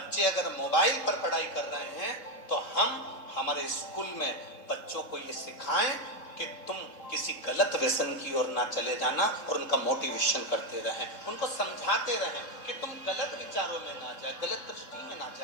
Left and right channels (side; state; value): right; late; 3.7 ms